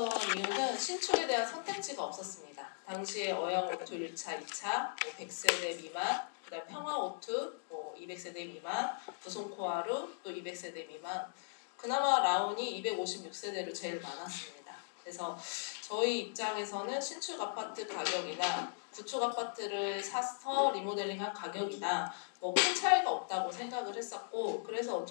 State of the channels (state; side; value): silent; right; digital silence